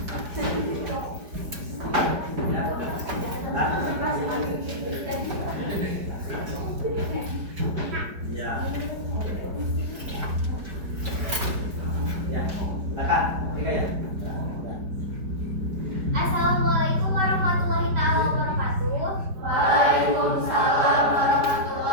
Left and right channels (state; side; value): late; left; 4.9 ms